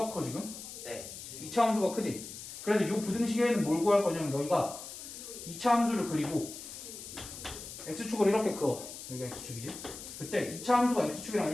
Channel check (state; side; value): noise; left; hiss, 11 dB below the sound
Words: 커 지금? 네. 2차 함수가 크지. 그래서 이 부등식에는 뭘 구할 거냐면 너희가 2차 함수를 그리고 x축을 이렇게 그어. 여기가 x축이지. 그때 2차 함수가 x축이랑